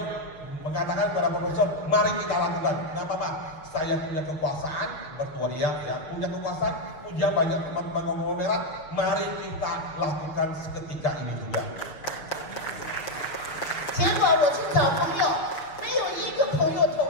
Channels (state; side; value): late; right; 6.4 ms